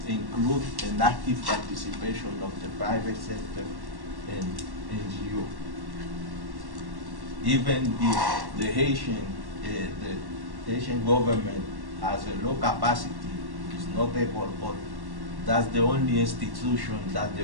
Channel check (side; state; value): left; late; 1.1 ms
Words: include an active participation of the private sector and NGO. Even if the Haitian government has a low capacity, is not able, but that's the only institution that the